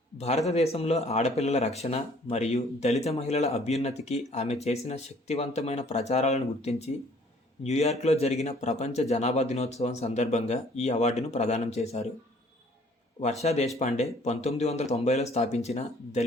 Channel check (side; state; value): both; normal; correlation 0.57